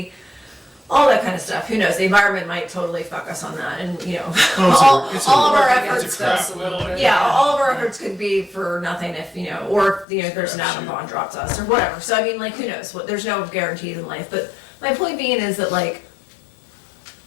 all that kind of stuff. Who knows? The environment might totally fuck us on that, and you know, all of our efforts. All of our efforts could be for nothing if you know, or you know, there's an atom bomb dropped us or whatever. So I mean, like, who knows? What there's no guarantees in life. But my point being is that like,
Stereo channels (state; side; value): drops out; right; at 10.1 s